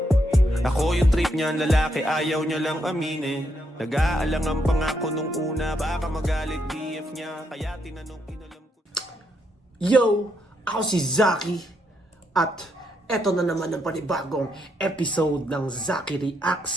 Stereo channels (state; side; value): normal; both; correlation 0.77